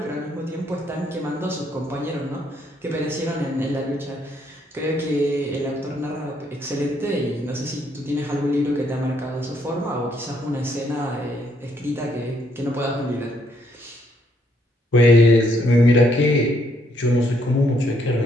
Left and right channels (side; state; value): both; normal; correlation 0.71